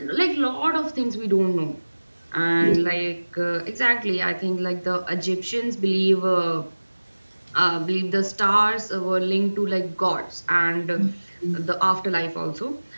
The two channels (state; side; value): inverted; both; correlation -1.00